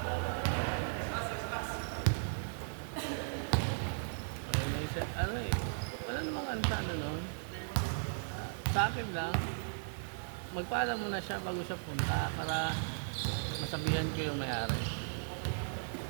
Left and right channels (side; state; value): left; silent; 53 dB below the other